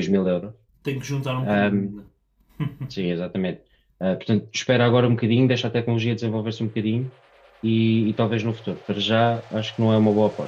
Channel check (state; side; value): identical; both; correlation 1.00